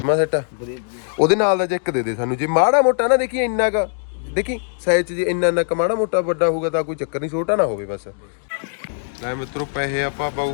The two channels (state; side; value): silent; right; digital silence